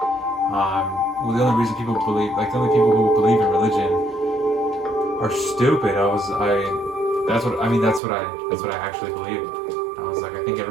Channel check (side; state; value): left; drops out; at 8.0 s